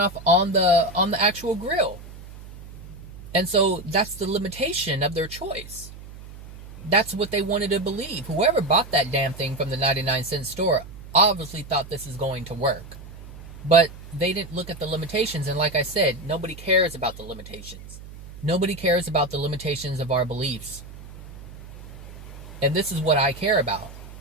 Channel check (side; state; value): right; noise; hum, 16 dB below the sound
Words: on the actual grill. And so that's the limitation of their choice. That's what they wanted to believe. Whoever bought that damn thing from the 99-cent store obviously thought this is going to work. But they didn't look at the limitations. And like I said, nobody cares about the limitations. Nobody cares about the limitations of our beliefs. And this is what I care about.